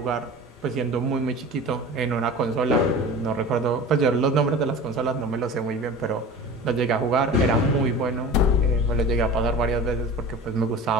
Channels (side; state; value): both; normal; correlation 0.36